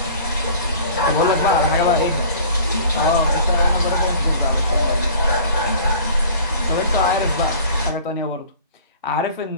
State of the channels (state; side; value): inverted; both; correlation -0.47